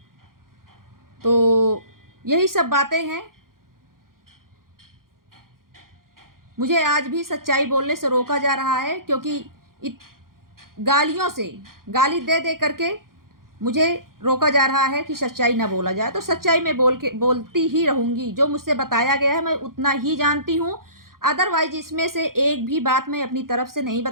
तो यही सब बातें हैं। मुझे आज भी सच्चाई बोलने से रोका जा रहा है, क्योंकि गालियों से, गाली दे दे करके मुझे रोका जा रहा है कि सच्चाई ना बोला जाए। तो सच्चाई मैं बोलती ही रहूँगी। जो मुझसे बताया गया है मैं उतना ही जानती हूँ, अदरवाइज इसमें से एक भी बात मैं अपनी तरफ से नहीं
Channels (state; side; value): late; left; 0.92 ms